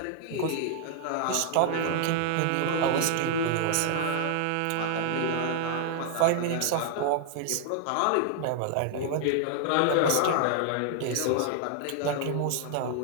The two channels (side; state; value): both; different; correlation 0.00